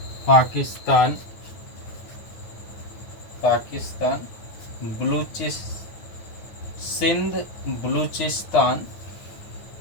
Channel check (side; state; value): right; late; 9.4 ms